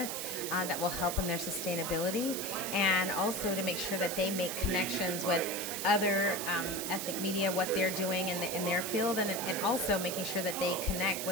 that will help in their sustainability, and also to make sure that they make connections with other ethnic media, what they're doing in their field, and also making sure that they connect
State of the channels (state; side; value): noise; right; hiss, 4 dB below the sound